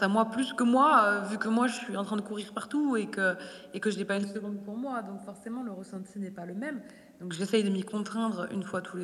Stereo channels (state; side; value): identical; both; correlation 1.00